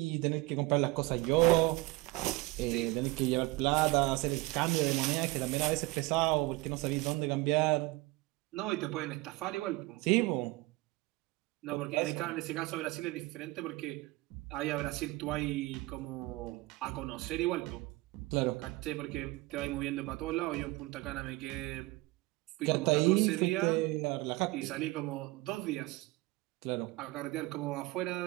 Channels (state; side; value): quieter; left; 21.2 dB